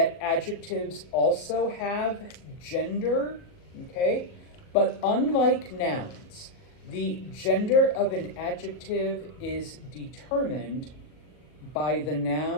adjectives also have gender, okay? But unlike nouns, the gender of an adjective is determined by the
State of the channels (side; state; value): right; late; 39 ms